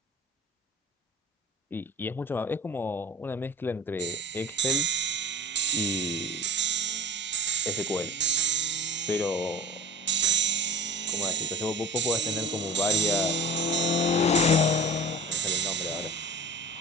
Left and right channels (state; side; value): normal; both; correlation 0.37